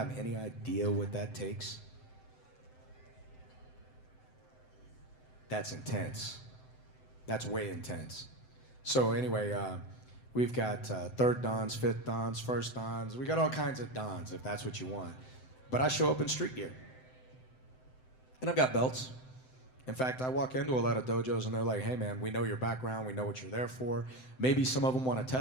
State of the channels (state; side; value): late; right; 7.8 ms